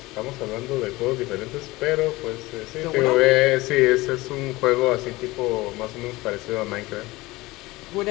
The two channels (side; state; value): right; quieter; 20.4 dB